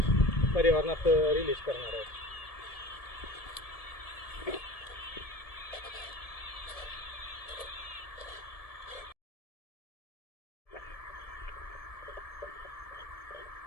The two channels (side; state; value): right; late; 1.7 ms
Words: पर्यावरणात रिलीज करणार आहोत.